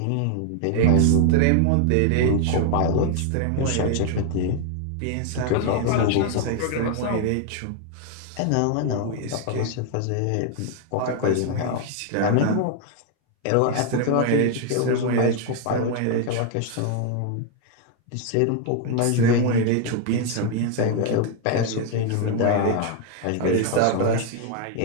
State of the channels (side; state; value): both; different; correlation 0.00